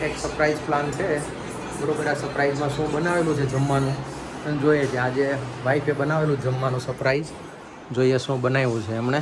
surprise plan છે બરોબર. આ સરપ્રાઈઝમાં શું બનાવેલું છે જમવાનું અને જોઈએ છે. આજે વાઈફે બનાવેલું જમવાનું સરપ્રાઈઝ, જોઈએ શું બનાવ્યું છે એમણે.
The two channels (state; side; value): identical; both; correlation 1.00